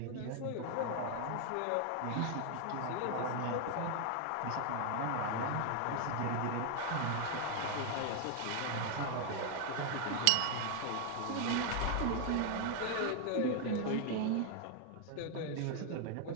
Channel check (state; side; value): different; both; correlation 0.00